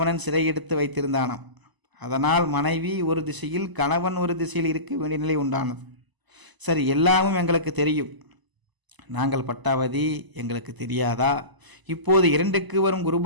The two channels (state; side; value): late; left; 1.0 ms